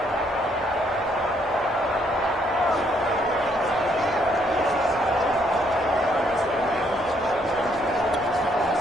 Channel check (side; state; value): both; normal; correlation 0.70